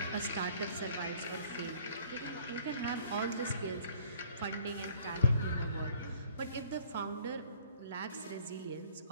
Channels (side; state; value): both; inverted; correlation -0.55